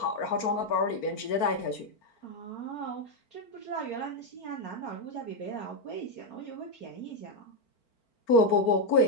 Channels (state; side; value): late; right; 4.5 ms